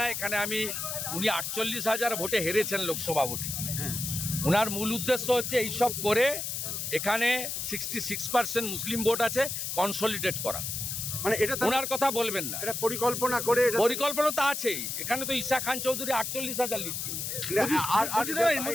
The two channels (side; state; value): left; noise; hiss, 3 dB below the sound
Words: এখানে উনি 48,000 ভোটে হেরেছেন লোকসভা ভোটে। ওনার মূল উদ্দেশ্য হচ্ছে এইসব করে এখানে 66% মুসলিম ভোট আছে, কনসলিডেট করা। মানে এটা ওনার কথা বলবেন না। এটা পরিকল্পনা করে পরিকল্পনা তো আছেই। এখানে তো ঈশা খান চৌধুরী 48,000 লিড পেয়েছে।